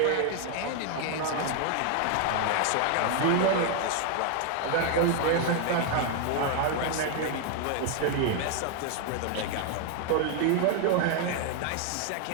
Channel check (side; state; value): both; different; correlation 0.00